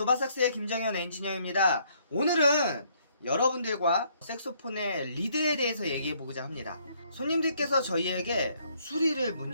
김정현 엔지니어입니다. 오늘은 여러분들과 색소폰의 리드에 대해서 얘기해보고자 합니다. 손님들께서 저희에게 수리를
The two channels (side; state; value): both; inverted; correlation -0.67